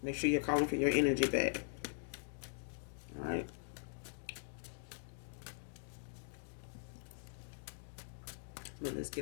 Make sure you're calling for your energy back. All right. But let's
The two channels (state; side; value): silent; right; digital silence